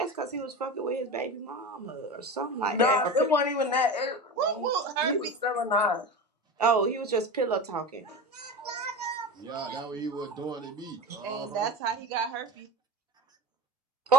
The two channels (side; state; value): both; normal; correlation 0.27